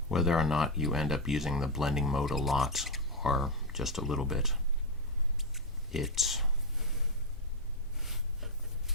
blending mode a lot or just a little bit, it's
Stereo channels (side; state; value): both; normal; correlation 0.04